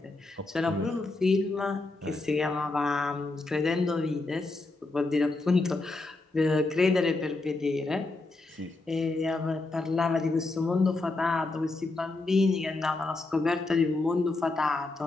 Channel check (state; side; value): quieter; right; 3.2 dB